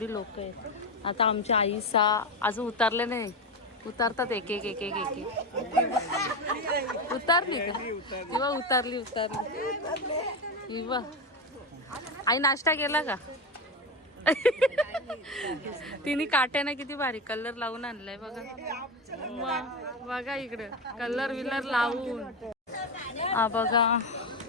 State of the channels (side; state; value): both; normal; correlation 0.16